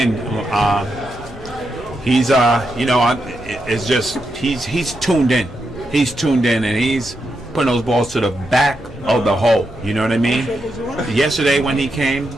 He's it's just he's tuned in. He's tuned in and he's putting those balls to the back of the hole. You know what I mean? Yesterday when he came,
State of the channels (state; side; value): noise; right; rumble, 23 dB below the sound